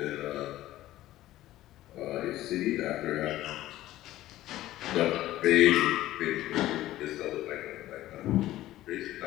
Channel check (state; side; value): quieter; right; 15.0 dB